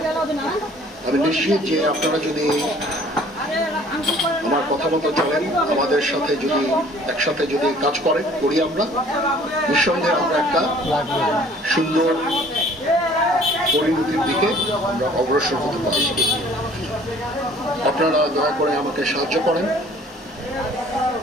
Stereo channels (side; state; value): both; normal; correlation 0.54